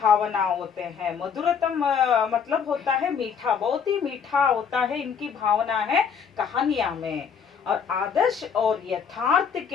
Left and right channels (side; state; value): right; quieter; 6.8 dB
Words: होते हैं, मधुरतम मतलब होता है मीठा, बहुत ही मीठा होता है इनकी भावना है कहानियां में। और आदर्श और यथार्थ